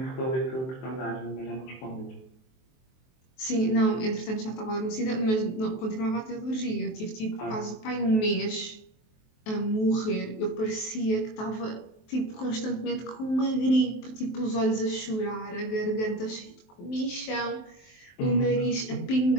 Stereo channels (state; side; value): late; right; 23 ms